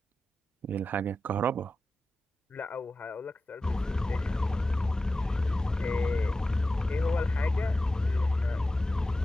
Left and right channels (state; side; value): normal; both; correlation 0.94